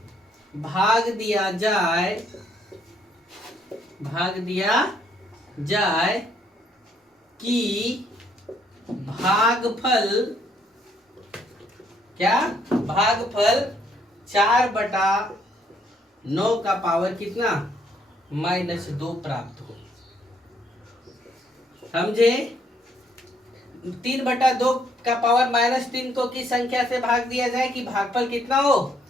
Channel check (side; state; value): both; normal; correlation 0.69